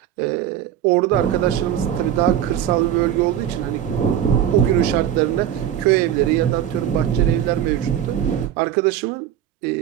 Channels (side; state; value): left; quieter; 10.5 dB